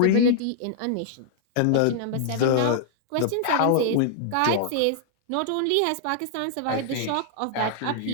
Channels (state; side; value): different; both; correlation -0.01